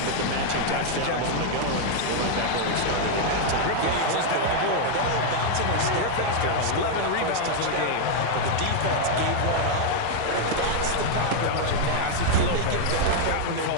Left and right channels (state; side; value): different; both; correlation 0.00